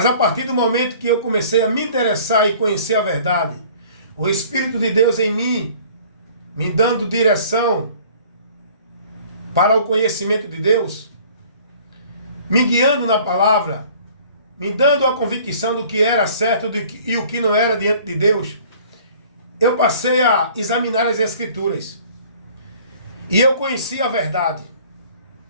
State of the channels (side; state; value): both; inverted; correlation -0.51